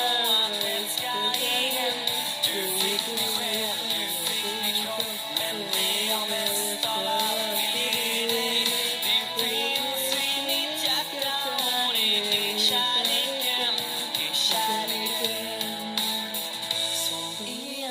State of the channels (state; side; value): identical; both; correlation 1.00